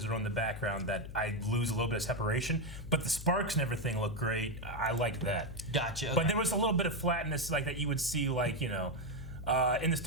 or on the background that I lose a little bit of separation. But the sparks and everything looked great. I liked that. Gotcha. Okay. But there was a little bit of flatness like that you would see, like, you know, in the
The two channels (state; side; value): noise; left; hum, 11 dB below the sound